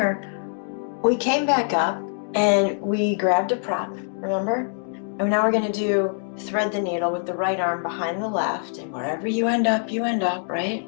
we came back up and we grabbed a prop, remember? And now we're going to do thread the needle with the right arm behind the left, and wherever you end up, right?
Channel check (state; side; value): silent; right; digital silence